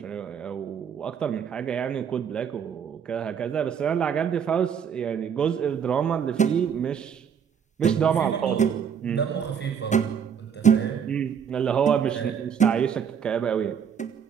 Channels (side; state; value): left; quieter; 7.6 dB